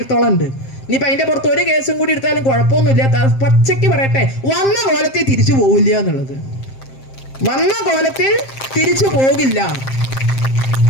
ഉണ്ട്. ഇനിയിപ്പൊ അതിന്റെ പുറത്ത് ഒരു കേസും കൂടി എടുത്താലും കുഴപ്പമൊന്നുമില്ല. പച്ചയ്ക്ക് പറയട്ടെ, വന്ന കോലത്തിൽ തിരിച്ചു പോകില്ല എന്നുള്ളത്. വന്ന കോലത്തിൽ തിരിച്ചു പോകില്ല,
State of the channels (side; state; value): right; late; 7.6 ms